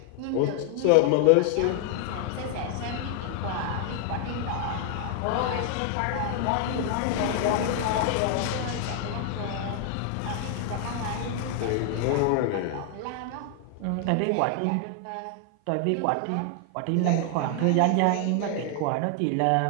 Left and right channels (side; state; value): both; different; correlation 0.00